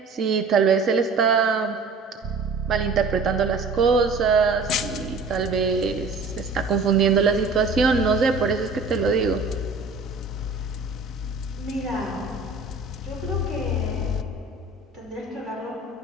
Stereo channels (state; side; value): quieter; left; 3.8 dB